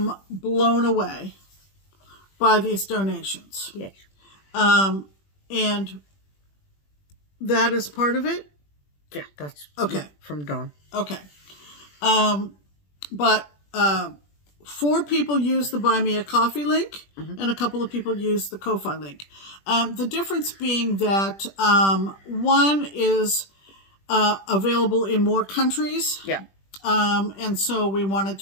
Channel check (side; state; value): right; late; 21 ms